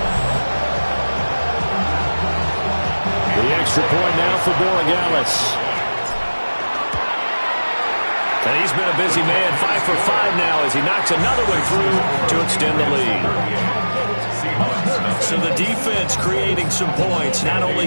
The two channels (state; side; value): inverted; both; correlation -1.00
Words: The extra point now for Borregales. And he's been a busy man, 5 for 5 now as he knocks another one through to extend the lead. So the defense creating some points, not only